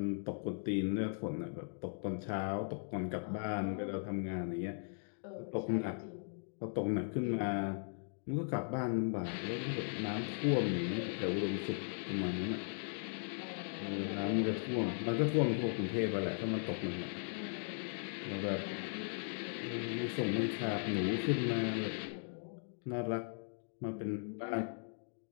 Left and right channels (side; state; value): right; silent; digital silence